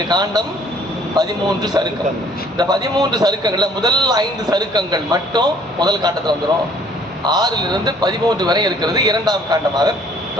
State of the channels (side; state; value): both; normal; correlation 0.58